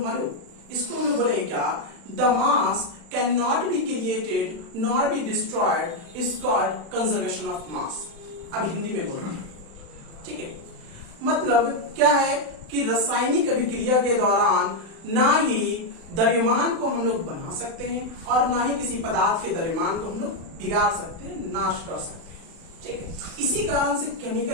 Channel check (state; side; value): late; left; 35 ms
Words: मालूम? इसको हम लोग बोलेंगे क्या, the mass can not be created not be destroyed, is called conservation of mass. अब हिंदी में बोल रहे हैं। ठीक है, मतलब क्या है कि रासायनिक अभिक्रिया के दौरान ना ही द्रव्यमान को हम लोग बना सकते हैं और ना ही किसी पदार्थ के द्रव्यमान को हम लोग बिगाड़ सकते हैं, नाश कर सकते हैं। ठीक है, इसी कारण से